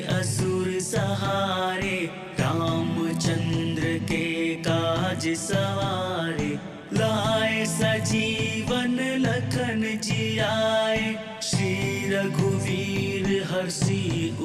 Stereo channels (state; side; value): identical; both; correlation 1.00